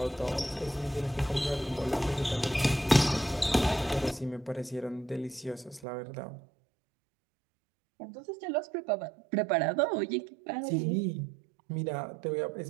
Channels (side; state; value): left; drops out; at 5.9 s